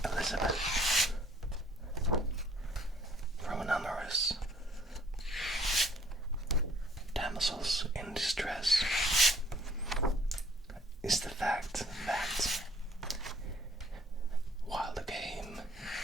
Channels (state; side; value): normal; both; correlation 0.60